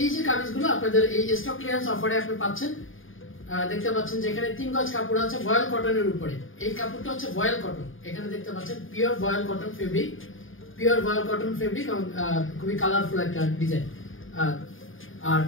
যে কামিজগুলো আপনাদের এই স্টক ক্লিয়ারেন্স অফারে আপনি পাচ্ছেন। দেখতে পাচ্ছেন যে এখানে 3 গজ কাপড় আছে ভয়েল কটনের উপরে। এই কাপড়টা হচ্ছে ভয়েল কটন। এখানে দেখতে পাচ্ছেন পিওর ভয়েল কটন ফেব্রিক, পিওর ভয়েল কটন ফেব্রিক এবং খুবই কালারফুল একটা ডিজাইন। আর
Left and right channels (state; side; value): late; right; 0.58 ms